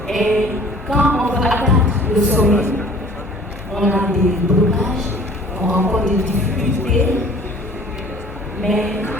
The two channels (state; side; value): normal; both; correlation 0.51